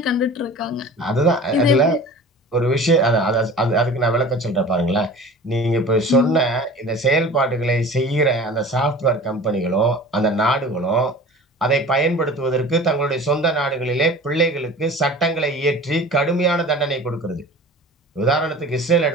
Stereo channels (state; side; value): normal; both; correlation 0.40